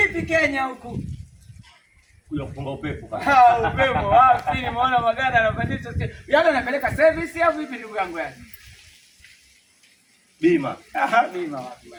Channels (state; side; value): identical; both; correlation 1.00